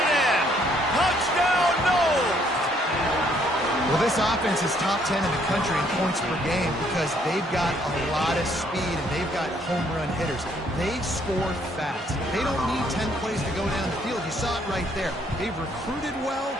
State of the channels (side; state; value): both; normal; correlation 0.67